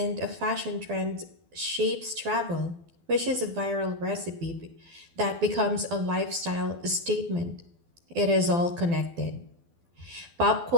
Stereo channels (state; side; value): late; left; 12 ms